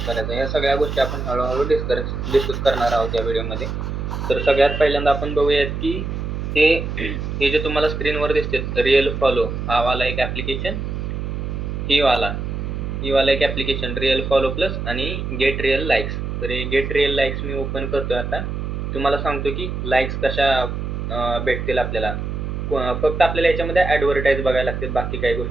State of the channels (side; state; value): right; noise; hum, 4 dB below the sound